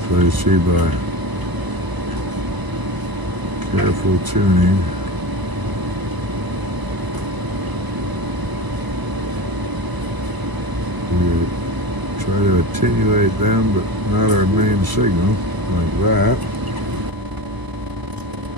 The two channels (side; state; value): left; late; 1.0 ms